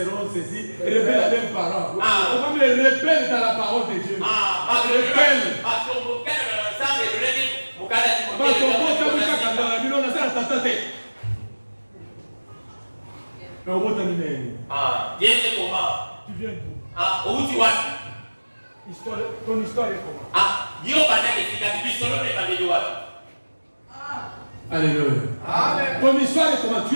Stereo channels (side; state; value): both; inverted; correlation -1.00